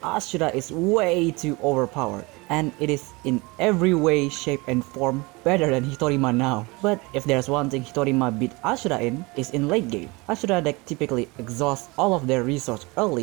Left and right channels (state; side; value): quieter; left; 25.1 dB